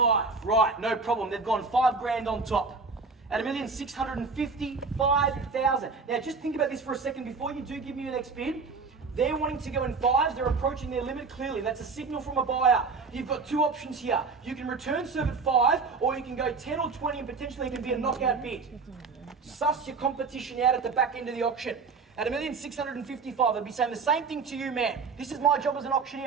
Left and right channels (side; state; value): left; quieter; 4.5 dB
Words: Right, no problem. They've gone 5 grand on top. At $1,655,000. Now, just think about this for a second before you do give me your next bid. They're wanting to go in 5s. They're approaching their limit clearly. That's a signal from a buyer. You've got 2 options here. You can return serve at 5, or you can go 10 or 20 and potentially it can be a knockout bid. Suss your competition out at the back end of the auction. At $1,655,000, they'd be saying the same thing to you, man. This is my job as an